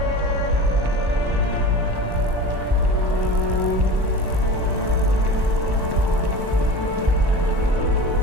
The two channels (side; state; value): left; late; 1.1 ms